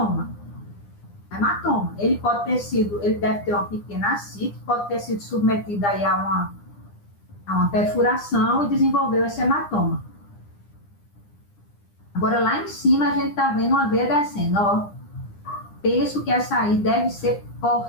Hematoma. Ele deve ter uma pequena ascite, pode ter sido submetido aí a uma perfuração e desenvolveu esse hematoma. Agora, lá em cima, a gente está vendo uma veia descendo, ó. Penso que essa aí deve ser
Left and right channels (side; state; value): right; late; 9.9 ms